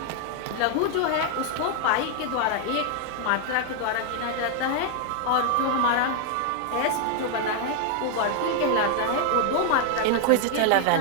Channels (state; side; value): different; both; correlation 0.00